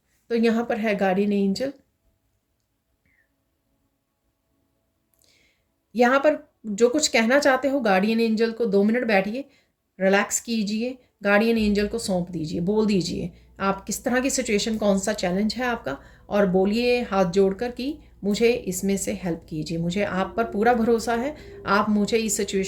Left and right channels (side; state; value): both; identical; correlation 1.00